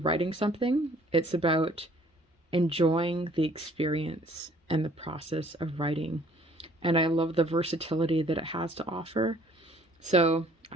something, it's about enjoying the experience and the process of writing. And I love the versatility that it has to offer. So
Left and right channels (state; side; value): normal; both; correlation 0.58